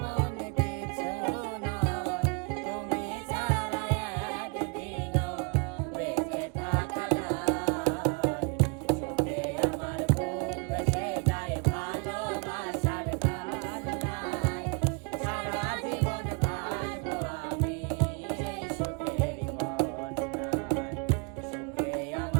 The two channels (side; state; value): left; quieter; 33.7 dB